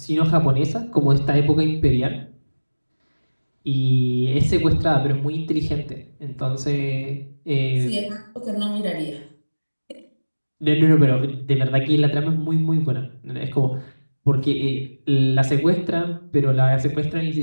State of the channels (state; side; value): inverted; both; correlation -1.00